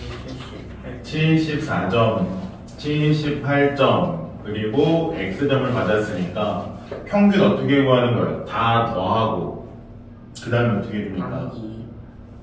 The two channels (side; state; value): both; identical; correlation 1.00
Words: 74점, 78점, 그리고 X점을 받았으니까 평균 어떻게 구하는 거예요? 다 더하고 그 다음에 어떻게 해줍니까? 나누기